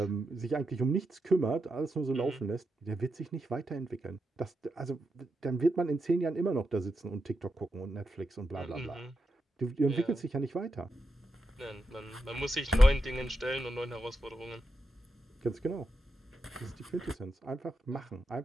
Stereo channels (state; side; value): normal; both; correlation 0.86